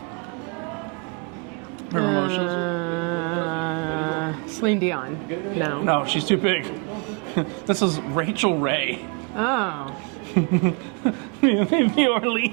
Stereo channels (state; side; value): quieter; left; 34.8 dB